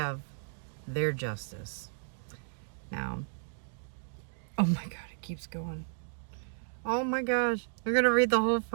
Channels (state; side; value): silent; left; digital silence